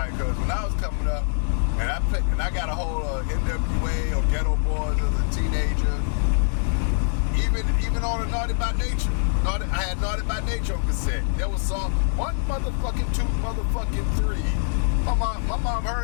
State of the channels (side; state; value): right; silent; 62 dB below the other